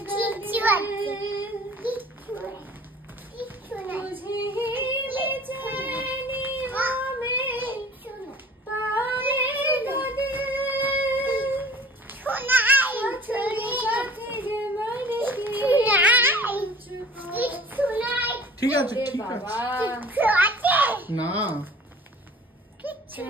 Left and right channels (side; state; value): both; normal; correlation 0.47